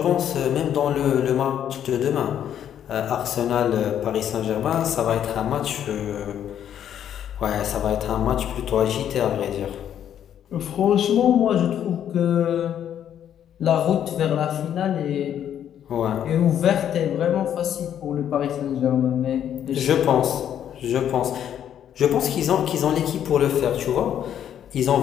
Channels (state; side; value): quieter; right; 9.9 dB